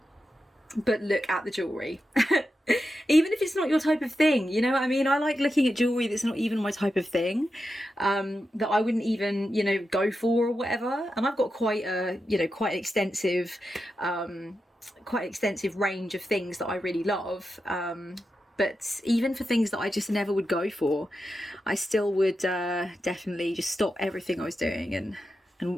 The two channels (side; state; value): both; normal; correlation 0.89